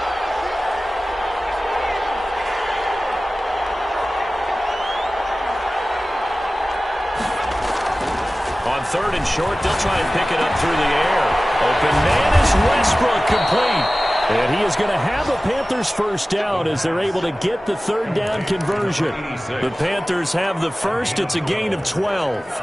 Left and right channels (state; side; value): normal; both; correlation 0.97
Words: 3rd and short. They'll try and pick it up through the air. Open man is Westbrook, complete. And he is going to have a Panthers first down as they're able to get the 3rd down conversion. The Panthers have the first. It's a gain of 12.